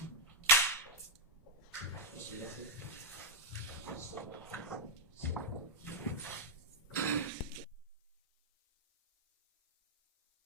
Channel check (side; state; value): both; normal; correlation -0.05